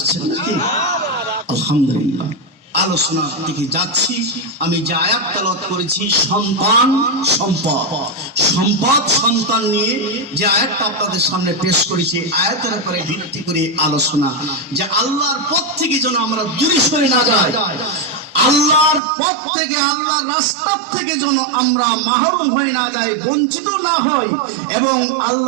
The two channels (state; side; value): drops out; left; at 19.0 s